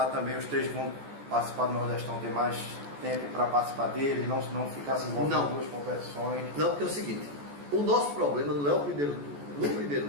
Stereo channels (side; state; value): left; late; 14 ms